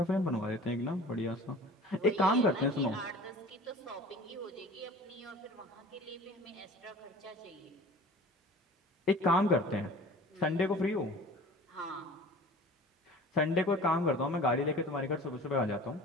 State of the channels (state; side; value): normal; both; correlation 0.42